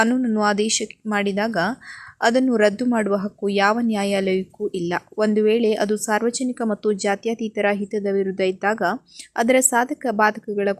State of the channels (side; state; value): both; identical; correlation 1.00